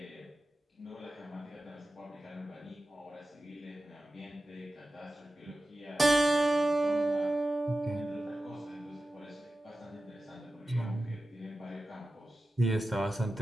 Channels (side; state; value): both; normal; correlation 0.94